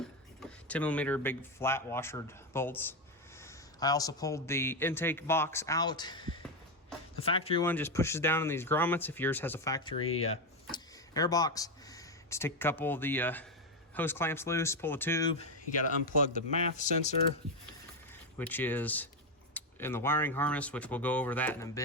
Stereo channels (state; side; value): normal; both; correlation 0.09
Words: millimeter big flat washered bolts. I also pulled the intake box out. The factory one just pushes down in these grommets. If yours has a factory air box, just take a couple of the hose clamps loose, pull the tube. You got to unplug the MAF sensor, which is in the wiring harness, which we'll go over that in a